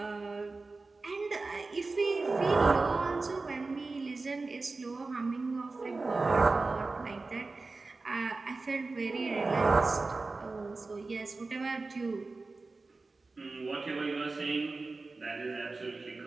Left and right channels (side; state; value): left; quieter; 3.7 dB